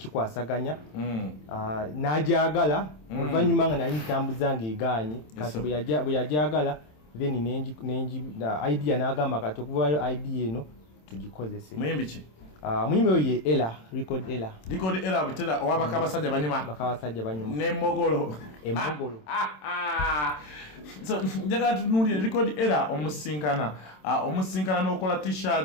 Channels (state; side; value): late; right; 27 ms